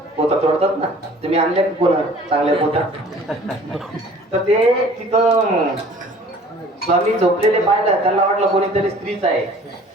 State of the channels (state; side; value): normal; both; correlation 0.50